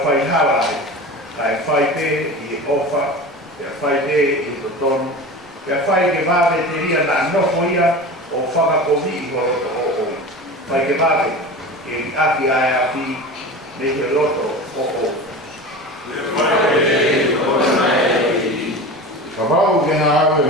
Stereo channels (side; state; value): both; normal; correlation 0.32